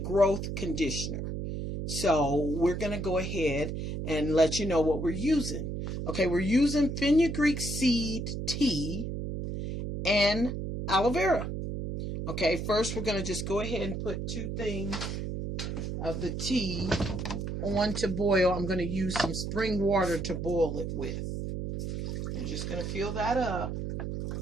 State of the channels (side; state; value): right; noise; hum, 4 dB below the sound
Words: conditioner. So we're going to go ahead and let you know what we're using. Okay, we're using fenugreek seed tea and aloe vera. Okay, first we're going to just go ahead and put 2 things of the tea on to boil. I'm going to use some spring water to boil it with. I'm just going to fill that up.